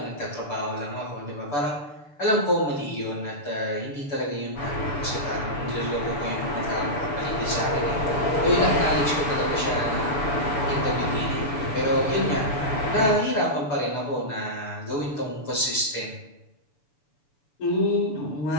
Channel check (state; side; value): late; right; 6.9 ms